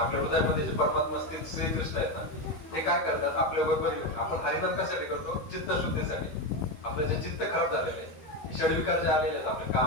हृदयामध्ये जे परमात्मा स्थित श्रीकृष्ण आहेत ना, ते काय करतात आपल्या बरोबर येऊन. आपण हरिनाम कशासाठी करतो? चित्तशुद्धीसाठी. आपलं जे चित्त खराब झालेलं आहे, षडविकार जे आलेले आहेत आपले,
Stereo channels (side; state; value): right; late; 13 ms